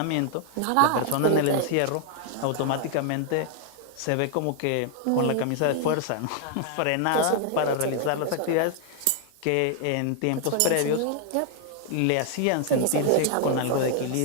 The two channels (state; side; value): different; both; correlation 0.00